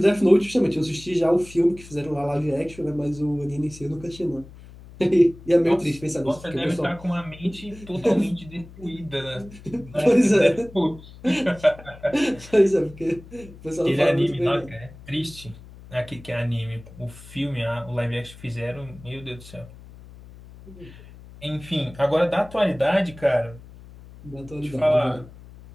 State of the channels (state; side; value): noise; left; hum, 19 dB below the sound